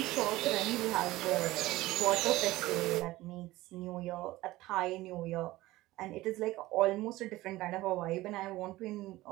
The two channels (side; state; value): left; quieter; 17.9 dB